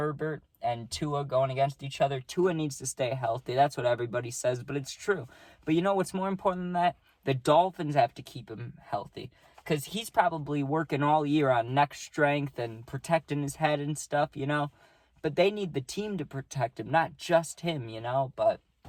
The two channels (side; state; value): both; identical; correlation 1.00